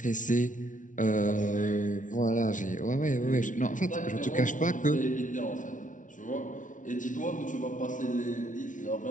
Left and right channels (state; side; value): late; right; 0.37 ms